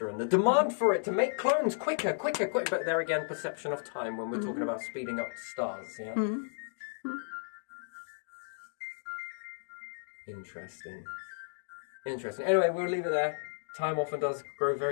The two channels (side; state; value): right; silent; digital silence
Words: and the demand for it to make clones quicker. But there again, perception of time when we're talking about speeding up stars, yeah? Interesting. Anyway, we'll leave it there. Time often does grow